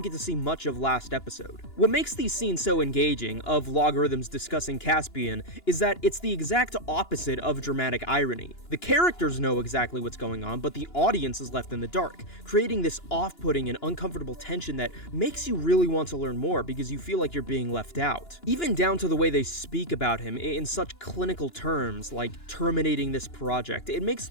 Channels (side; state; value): right; late; 2.9 ms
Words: get to see much of last episode. What makes these scenes so engaging of logarithms discussing Caspian is that it's the exact opposite of dramatic irony. The characters know exactly what's going on, but the audience is left in the dark, creating this off-putting and uncomfortable tension that makes you really want to learn more because you feel like you're being left out. Even down to the way they speak about him in such clinical terms, like terminating this project, it makes